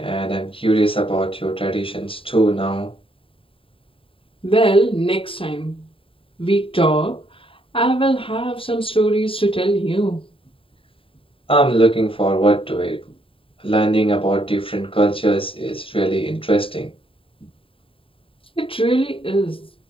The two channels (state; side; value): late; right; 0.26 ms